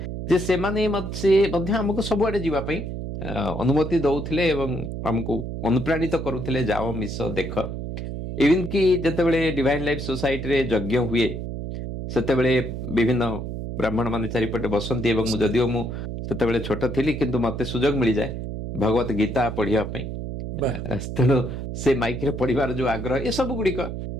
जे से माने से मध्य हमको सबुआडे जीवा पई अनुमति दउथिले एवं हमको अनुप्राणित करूथिले जाओ मिस देख इवन कि जतेबेले डिवाइन लाइफ सोसाइटी रे यज्ञ हुए सेतेबेले विभिन्न ब्राह्मण माने चारिपटे बसंती एवं जदिओ मु सेतेबेले छोट थिली किंतु मते सुयोग मिली जाए भगवत गीता पढ़िया पई तेणु से माइक रे पढ़िबार जो आग्रह ए सब गुडी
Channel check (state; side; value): noise; right; hum, 6 dB below the sound